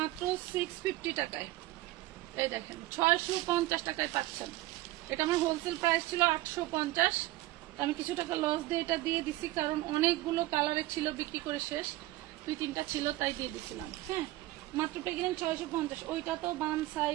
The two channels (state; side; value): quieter; left; 17.5 dB